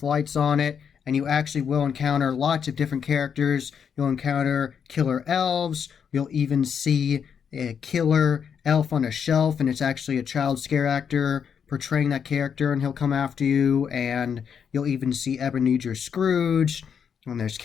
lights on it, and you actually will encounter lots of different characters. You'll encounter killer elves, you'll even see a killer elf on a shelf, and it's actually a child scare actor portraying that character, and he'll come after you, and you'll even see Ebenezer Scrooge, and there's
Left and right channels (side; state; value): right; quieter; 7.3 dB